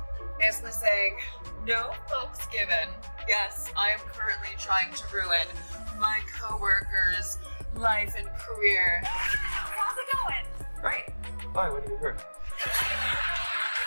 Basically saying, no fucks given. Yes, I am currently trying to ruin my co-worker's life and career. How's it going? Great. Fine, what do you hear?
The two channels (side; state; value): both; inverted; correlation -1.00